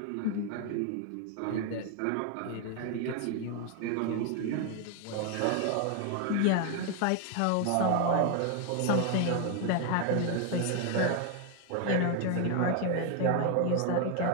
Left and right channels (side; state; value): both; different; correlation 0.01